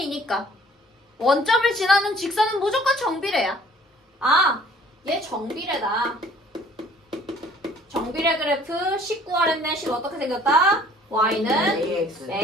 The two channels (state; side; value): normal; both; correlation 0.55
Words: 원점을 지나는 직선은 무조건 정비례야. 아, 얘 정비례다. 정비례 그래프 19 구하랬네. 10 어떻게 생겼다? y는 AX.